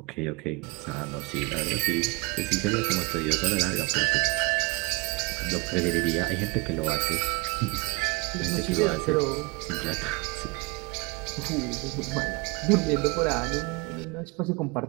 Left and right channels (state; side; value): quieter; left; 27.2 dB